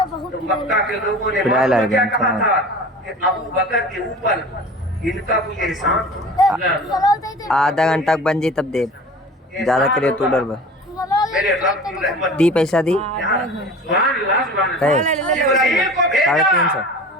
تو مکہ کے لوگوں نے کیا کہا تھا کہ ابو بکر کے اوپر ان کا کوئی احسان تھا۔ آدھا گھنٹہ بن جی تب دے زیادہ کرے تو ڈر میرے رب کی رحمت دی پیسہ دی ابراہیم کو بھیجا 350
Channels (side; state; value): both; normal; correlation 0.39